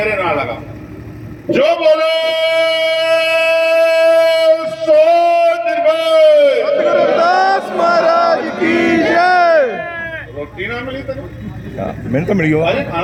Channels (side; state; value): both; identical; correlation 1.00